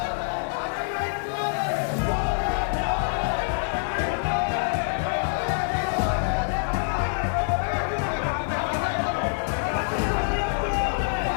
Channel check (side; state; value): right; silent; digital silence